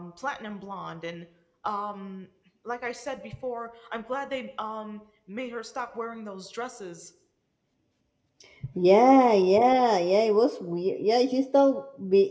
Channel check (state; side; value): identical; both; correlation 1.00